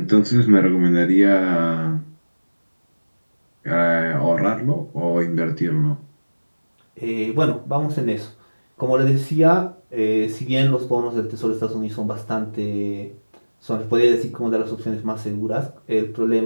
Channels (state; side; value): inverted; both; correlation -1.00